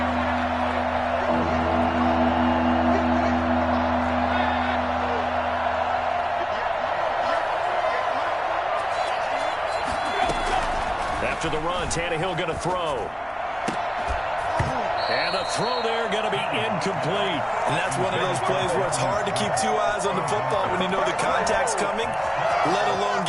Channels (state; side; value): identical; both; correlation 1.00